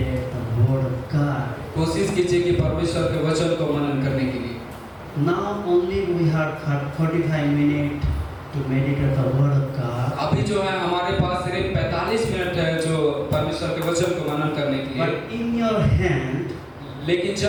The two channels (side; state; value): both; identical; correlation 1.00